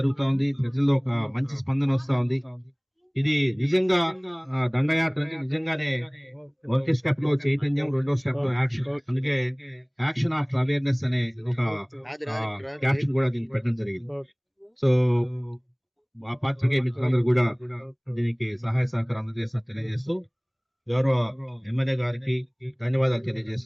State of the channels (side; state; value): both; identical; correlation 1.00